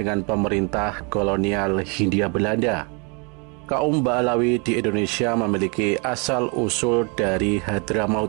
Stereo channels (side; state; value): left; quieter; 33.4 dB